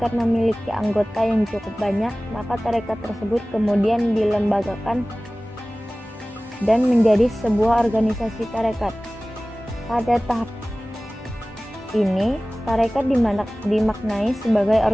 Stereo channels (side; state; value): both; normal; correlation 0.98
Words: memiliki anggota yang cukup banyak, maka tarekat tersebut kemudian dilembagakan dan menjadi sebuah organisasi tarekat. Pada tahap ini, tarekat dimaknai sebagai